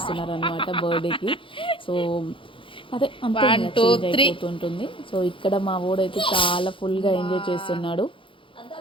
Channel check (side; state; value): right; late; 0.25 ms